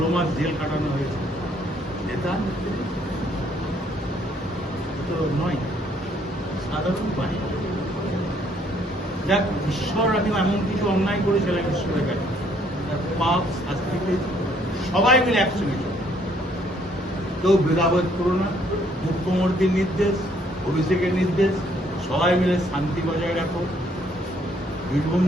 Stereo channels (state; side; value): normal; both; correlation 0.66